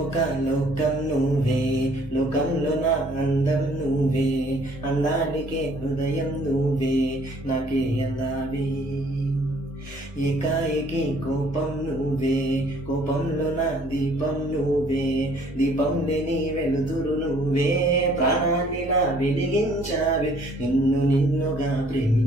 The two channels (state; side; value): normal; both; correlation 0.59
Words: ఒక లోకం నువ్వే, లోకంలో నా అందం నువ్వే, అందానికే హృదయం నువ్వే, నాకే అందావే. ఏకాఏకి కోపం నువ్వే, కోపంలో నా దీపం నువ్వే, దీపం లేని వెలుతురు నువ్వే, ప్రాణాన్నిలా వెలిగించావే. నిన్ను నిన్నుగా